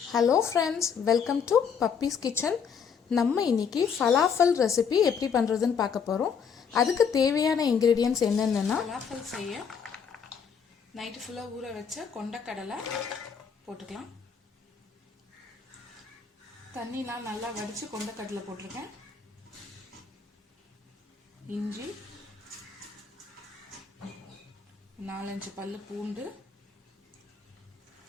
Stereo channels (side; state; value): right; quieter; 6.6 dB